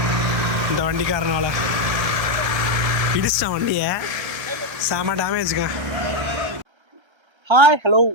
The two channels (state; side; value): late; left; 1.2 ms